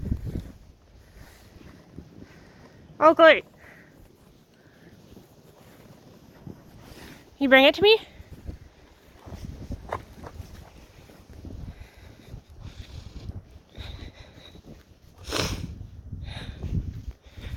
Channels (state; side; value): identical; both; correlation 1.00